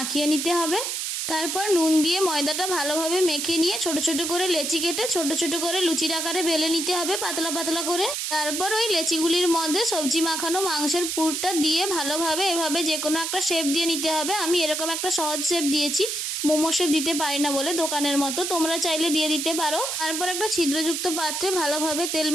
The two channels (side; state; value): right; noise; hiss, 2 dB below the sound